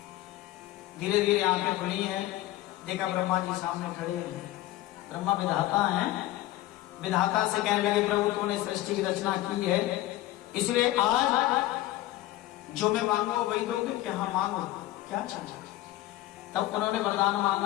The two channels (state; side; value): quieter; right; 16.0 dB